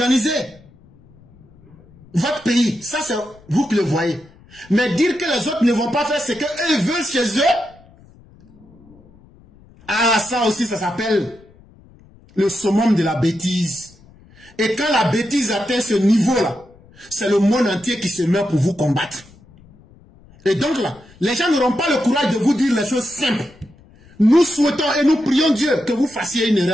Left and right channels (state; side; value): noise; left; rumble, 26 dB below the sound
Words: votre pays, ça c'est vous qui le voyez. Mais dire que les autres ne vont pas faire ce qu'eux veulent chez eux, ah ça aussi ça s'appelle le summum de la bêtise. Et quand la bêtise atteint ce niveau-là, c'est le monde entier qui se met pour vous combattre. Et donc là, les gens n'auront pas le courage de vous dire les choses simples. Nous souhaitons et nous prions Dieu que vous fassiez une